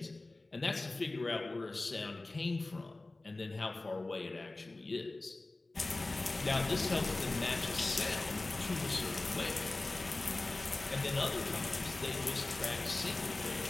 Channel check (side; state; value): right; quieter; 3.0 dB